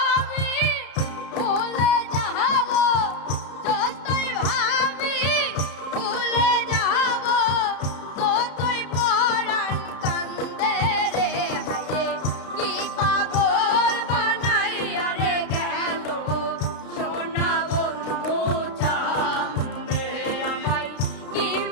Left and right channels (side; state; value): right; late; 32 ms